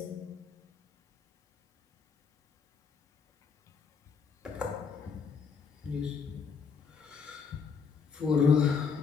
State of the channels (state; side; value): quieter; right; 5.9 dB